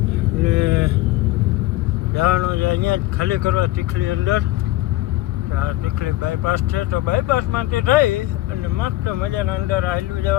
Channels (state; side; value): quieter; right; 17.1 dB